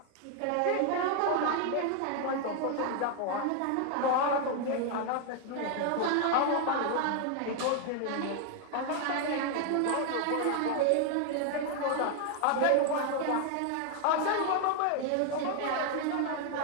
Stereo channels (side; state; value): both; different; correlation 0.00